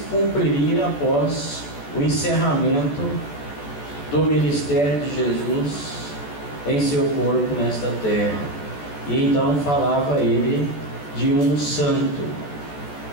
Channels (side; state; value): right; late; 14 ms